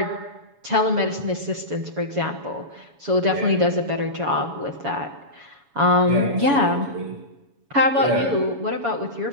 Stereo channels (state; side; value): late; left; 7.1 ms